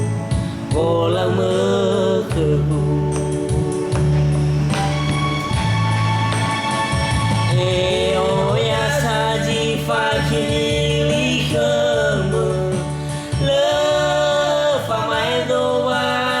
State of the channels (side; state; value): both; identical; correlation 1.00